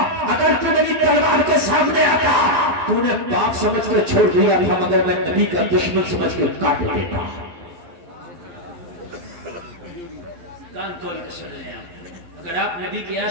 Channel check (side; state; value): left; late; 11 ms